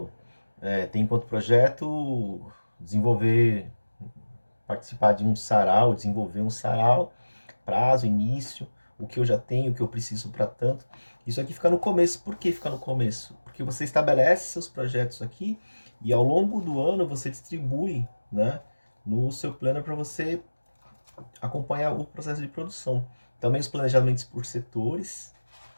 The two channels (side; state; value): both; inverted; correlation -1.00